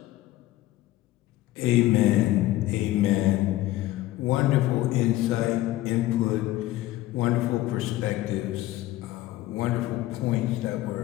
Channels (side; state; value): right; quieter; 16.0 dB